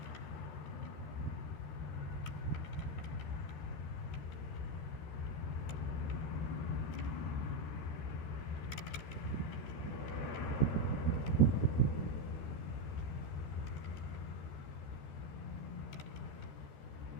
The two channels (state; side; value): late; right; 13 ms